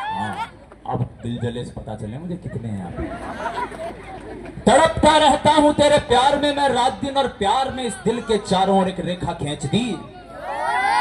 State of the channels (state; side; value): identical; both; correlation 1.00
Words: अब दिल जले से पता चले मुझे कितने हैं आप। तड़पता रहता हूं तेरे प्यार में मैं रात दिन, और प्यार में इस दिल के चारों ओर एक रेखा खींच दी।